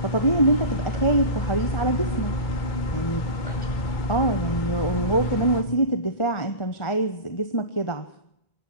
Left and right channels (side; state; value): right; late; 1.4 ms